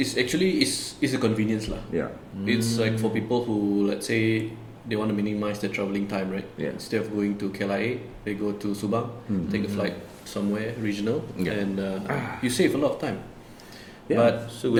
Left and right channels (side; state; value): both; identical; correlation 1.00